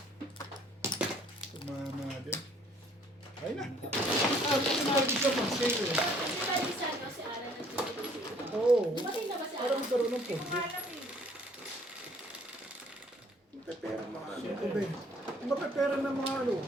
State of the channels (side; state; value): both; normal; correlation 0.59